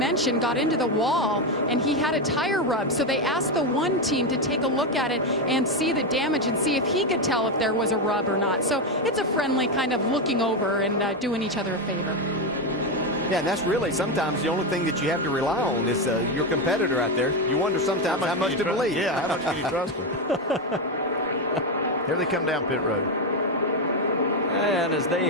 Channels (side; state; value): both; normal; correlation 0.09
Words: got into the wall and he had a tire rub. So they asked the 1 team to take a look at it and see the damage and see if he could tell if there was a rub or not. So it's a friendly kind of looking over and doing each other a favor. Yeah, and that's really sometimes the only thing that you have to rely on is your competitor out there. You wonder sometimes how much to believe. Yeah, how much can you trust them? Here they come down pit road. And as they